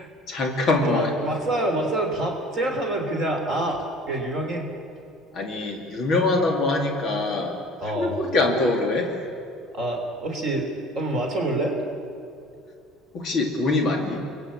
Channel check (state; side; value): normal; both; correlation 0.46